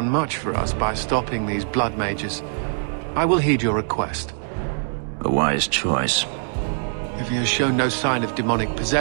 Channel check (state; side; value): silent; left; digital silence